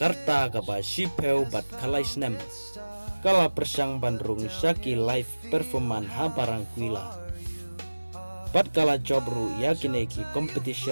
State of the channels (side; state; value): both; inverted; correlation -1.00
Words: ka ba shipeu bat kalai snem kala persang bandrung Shaki live performan ha barang kuila pat kala jobru yakineki